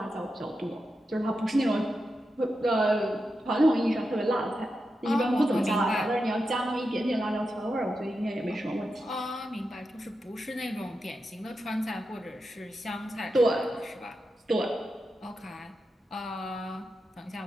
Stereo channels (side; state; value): both; normal; correlation 0.89